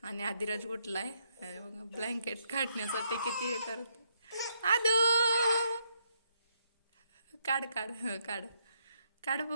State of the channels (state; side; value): inverted; both; correlation -0.75